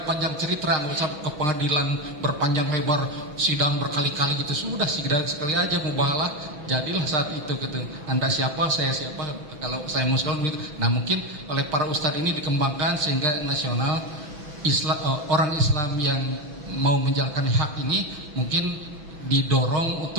panjang cerita, nggak usah ke pengadilan berpanjang lebar, sidang berkali-kali gitu, sudah sekali aja mubahalah, jadilah saat itu gitu. Anda siapa, saya siapa, kalau saya muslim gitu. Nah, mungkin oleh para ustadz ini dikembangkan sehingga nasional Islam, orang Islam yang mau menjalankan hak ini mungkin didorong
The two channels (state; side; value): late; left; 6.1 ms